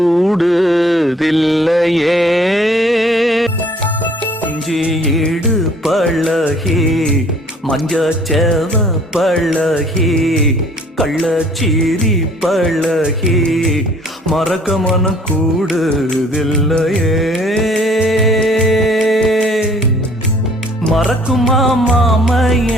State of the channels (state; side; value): normal; both; correlation 0.57